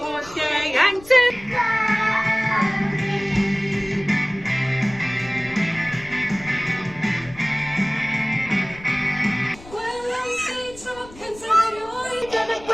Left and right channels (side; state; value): left; noise; rumble, 20 dB below the sound